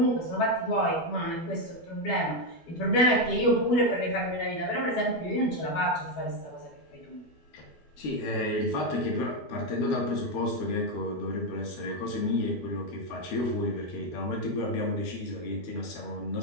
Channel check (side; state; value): right; late; 12 ms